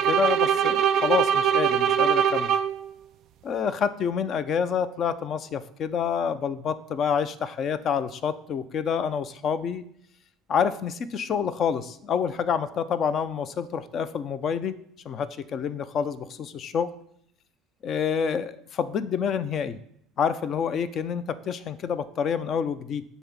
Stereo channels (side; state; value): both; normal; correlation 0.56